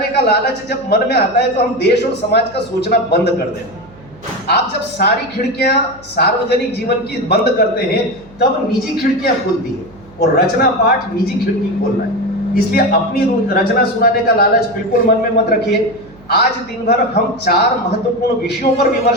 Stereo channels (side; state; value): right; noise; hum, 24 dB below the sound